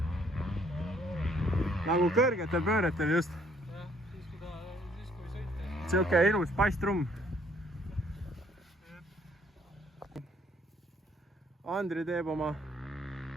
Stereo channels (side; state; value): both; normal; correlation 0.64